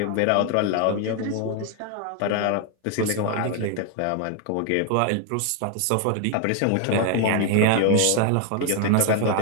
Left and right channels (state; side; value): different; both; correlation 0.01